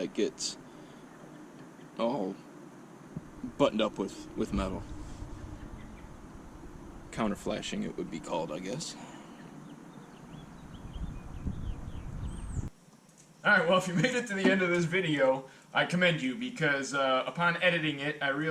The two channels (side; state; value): both; identical; correlation 1.00